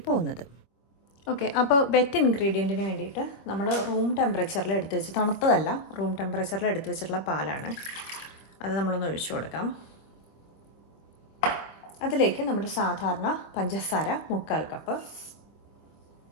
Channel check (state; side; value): late; right; 25 ms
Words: പോകുന്നത്. ഓക്കെ, അപ്പോൾ വെറ്റ് ഇൻഗ്രീഡിയൻറ്റിന് വേണ്ടിയിട്ട് നമ്മൾ റൂം ടെമ്പറേച്ചറിൽ എടുത്ത് വെച്ച്, തണുത്തതല്ല, റൂം ടെമ്പറേച്ചറിൽ എടുത്ത് വെച്ചിട്ടുള്ള പാലാണ്. അത് നമ്മളൊന്ന് ഒഴിച്ചു കൊടുക്കാം. അതിലേക്ക് നമ്മുടെ സാധാരണ പഞ്ചസാര 3/4 കപ്പ്,